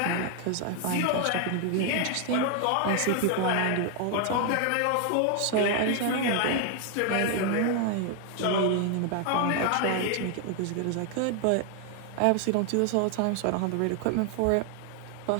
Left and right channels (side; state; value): both; different; correlation 0.00